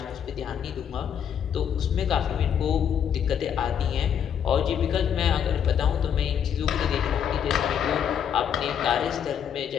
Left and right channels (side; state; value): right; quieter; 8.5 dB